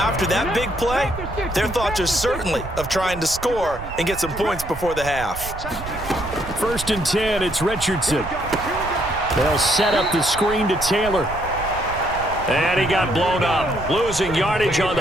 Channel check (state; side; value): noise; right; rumble, 11 dB below the sound